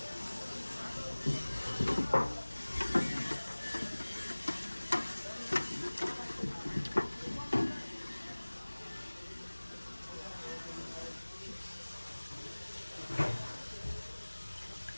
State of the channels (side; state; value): both; inverted; correlation -1.00